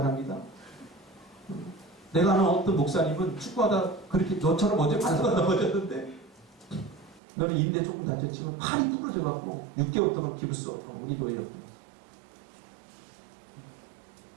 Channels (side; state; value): left; drops out; at 7.2 s